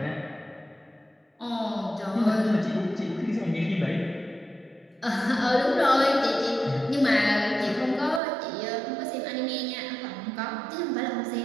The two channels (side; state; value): left; drops out; at 8.2 s